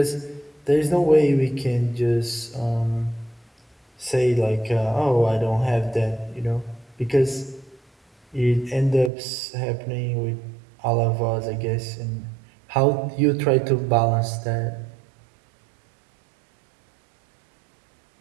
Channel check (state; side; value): drops out; left; at 9.1 s